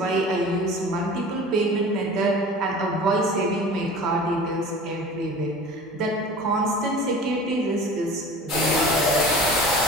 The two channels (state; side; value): normal; both; correlation 0.39